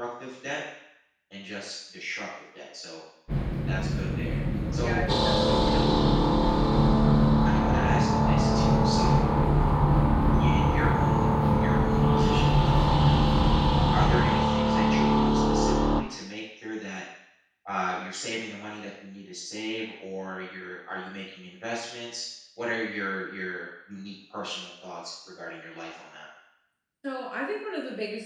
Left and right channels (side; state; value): both; identical; correlation 1.00